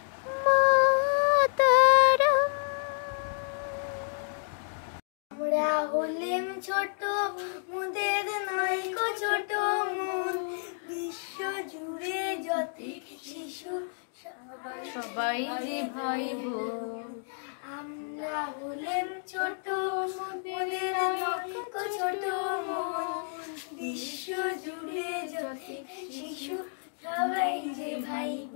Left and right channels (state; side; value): silent; right; digital silence